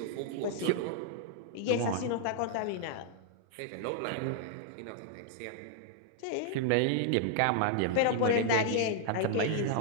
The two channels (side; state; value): both; different; correlation -0.01